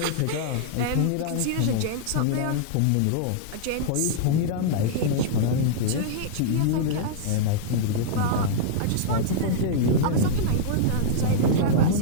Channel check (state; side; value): different; both; correlation -0.02